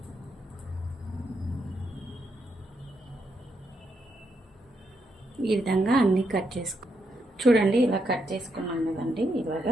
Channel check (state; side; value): normal; both; correlation 0.80